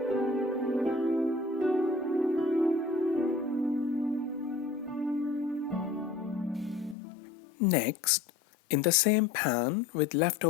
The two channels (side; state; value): right; drops out; at 7.0 s